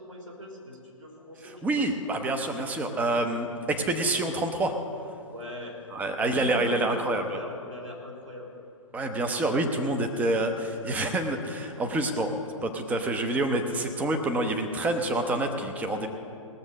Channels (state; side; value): normal; both; correlation 0.32